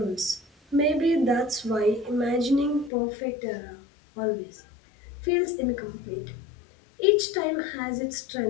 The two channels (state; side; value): drops out; right; at 2.9 s